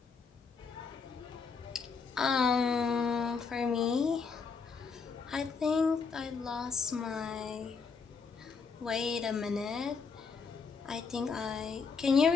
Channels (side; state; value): right; quieter; 5.2 dB